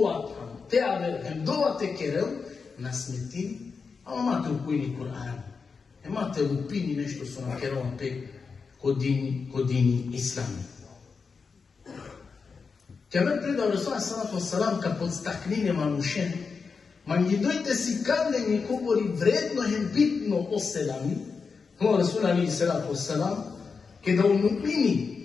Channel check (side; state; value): right; quieter; 5.1 dB